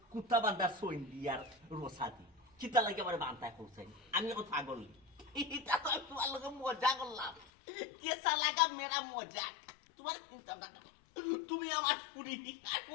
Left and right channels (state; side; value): drops out; right; at 7.5 s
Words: কুত্তা বান্দার সইন দিয়ার রোসাদি কিতা লাগে আমারে বানতা করছেন আমি এখন পাগল এটা তো তোমার লগে মজা করলাম কেসা লাগা মেরা মজা তোমার চিন্তা না তুমি আমার পুরি আর